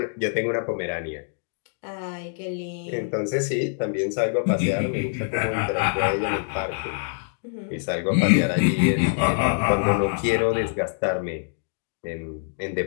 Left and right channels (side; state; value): right; silent; digital silence